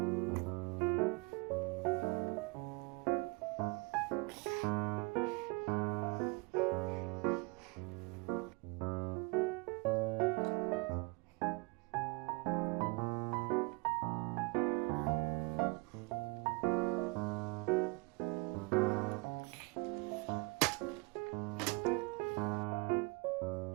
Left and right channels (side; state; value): left; quieter; 28.0 dB